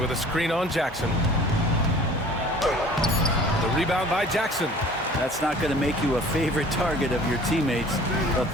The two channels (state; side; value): normal; both; correlation 0.48